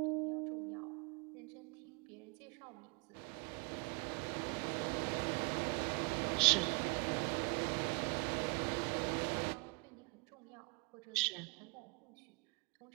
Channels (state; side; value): quieter; left; 28.6 dB